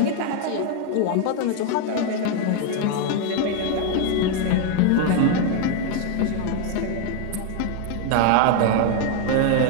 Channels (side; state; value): both; different; correlation 0.01